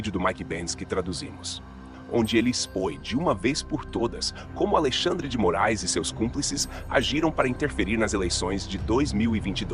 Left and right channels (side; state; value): both; identical; correlation 1.00